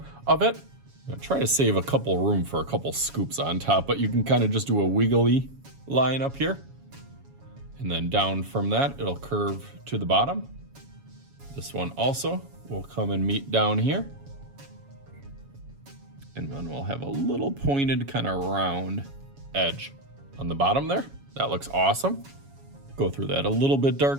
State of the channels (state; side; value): late; left; 7.2 ms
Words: of it. Try to save a couple room for a couple scoops on top, but you can kind of just do a wiggly line up here. And then down from that, it'll curve to the bottom. This one also will come and meet down here. And then we'll have a little pointed kind of round edge on the bottom there. That looks awesome. Go through that a little bit